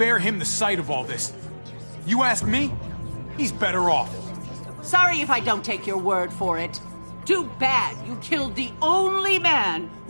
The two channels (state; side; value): inverted; both; correlation -1.00